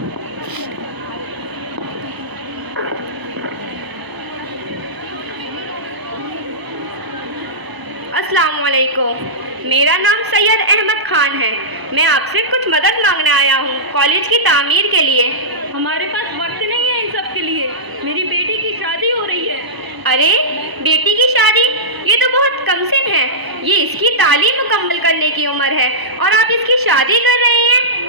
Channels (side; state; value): left; late; 1.0 ms